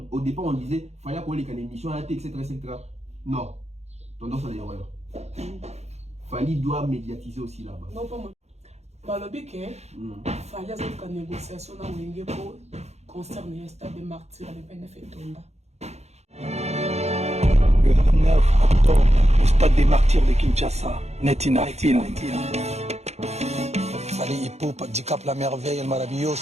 Au départ, on disait fallait koleka l'émission etc. Non, tendance à l'erreur. Fallait doit médiatiser aussi là-bas. Non pas moi. Bah le but que fallait avoir une négociation dans le pour concerner le stade de martyrs à l'EPNF et Tonda. Le 9 octobre, le stade des martyrs de Kinshasa, Netina. Fali Ipupa, di Cap la Merveille, el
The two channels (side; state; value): left; late; 0.31 ms